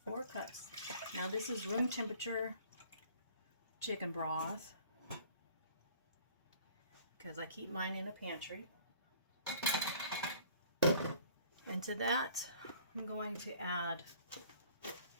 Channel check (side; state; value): both; inverted; correlation -0.53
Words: 4 cups. Now this is room temperature chicken broth because I keep mine in the pantry. And to that, I'm going to add